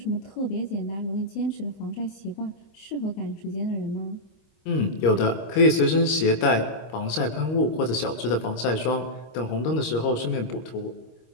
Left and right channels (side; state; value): right; late; 26 ms